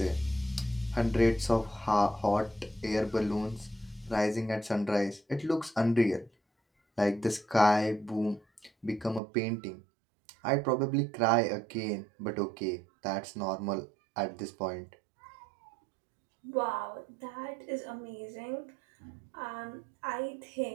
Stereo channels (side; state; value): left; drops out; at 9.2 s